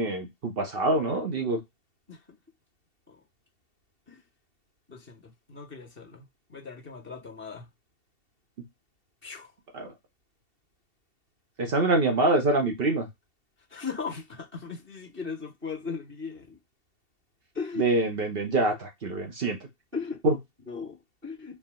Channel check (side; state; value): left; late; 2.7 ms